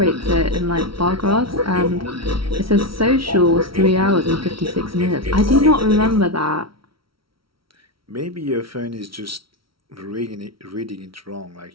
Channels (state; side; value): late; left; 0.75 ms